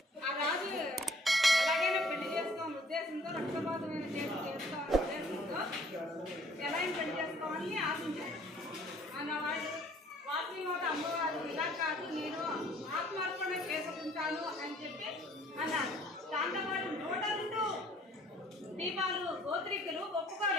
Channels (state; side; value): normal; both; correlation 0.57